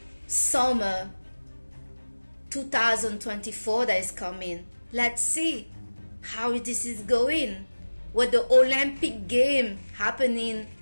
summer 2024 that is coming. Let's see how this is going with the Olympic game happening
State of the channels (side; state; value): both; inverted; correlation -1.00